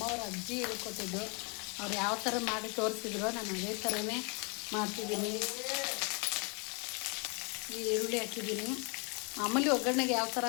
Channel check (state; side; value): quieter; right; 34.0 dB